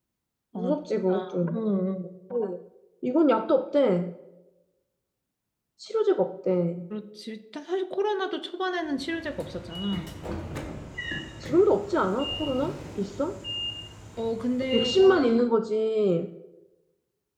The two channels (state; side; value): identical; both; correlation 1.00